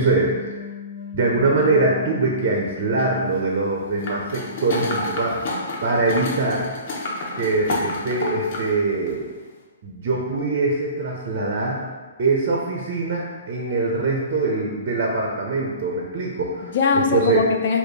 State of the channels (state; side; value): inverted; both; correlation -0.39